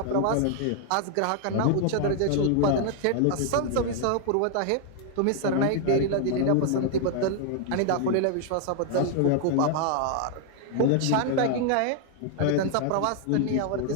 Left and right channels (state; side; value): different; both; correlation 0.00